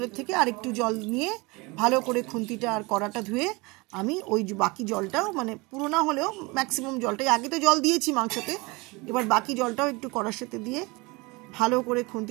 থেকে আর একটু জল নিয়ে ভালো করে খুন্তিটা আর কড়াটা ধুয়ে আমি ওই বাকি জলটাও, মানে পুরো না হলেও ম্যাক্সিমাম জলটাই, আগে তো জল দিয়েছি মাংসতে, এবার বাকি জলটাও একটু কড়ার সাথে দিয়ে ভালো করে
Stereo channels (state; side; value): quieter; left; 25.5 dB